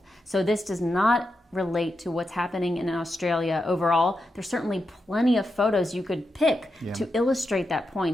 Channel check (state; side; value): normal; both; correlation 0.87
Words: So this does not relate to what's happening in Australia overall. There's certainly plenty of photos you could pick to illustrate that